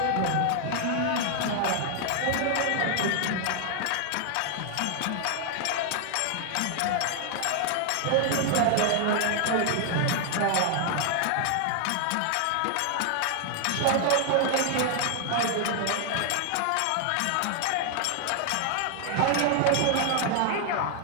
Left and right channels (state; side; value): different; both; correlation 0.00